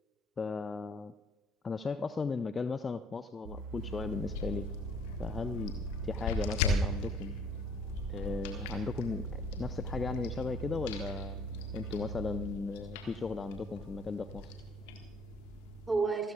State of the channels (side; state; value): both; normal; correlation 0.57